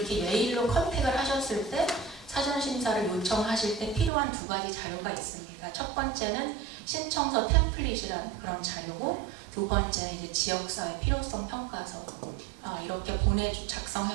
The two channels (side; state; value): left; drops out; at 4.1 s